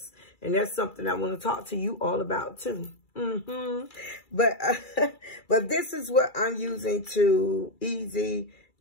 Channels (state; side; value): late; right; 2.3 ms